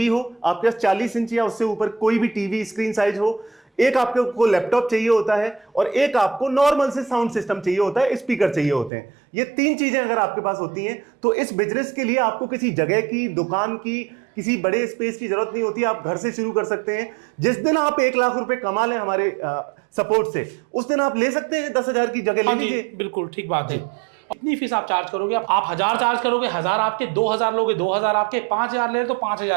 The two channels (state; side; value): drops out; left; at 8.9 s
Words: हो, आपके पास 40 इंच या उससे ऊपर कोई भी टीवी स्क्रीन साइज हो, एक आपको लैपटॉप चाहिए होता है और एक आपको नॉर्मल से साउंड सिस्टम चाहिए होता है, स्पीकर चाहिए होते हैं। ये 3 चीजें अगर आपके पास होती हैं तो इस बिजनेस के लिए आपको किसी जगह की, दुकान की, किसी बड़े स्पेस की जरूरत नहीं होती। आप घर से शुरू कर सकते हैं। जिस दिन आप 1 लाख रुपए कमा लें हमारे सपोर्ट से, उस दिन आप ले सकते हैं 10,000 की जगह ले हाँ जी, लीजिए। बिल्कुल ठीक बात है। कितनी फीस आप चार्ज करोगे? आप 1000 चार्ज करोगे, 1000 आपके, 2000 लोगे, 2000 आपके, 5000 ले रहे तो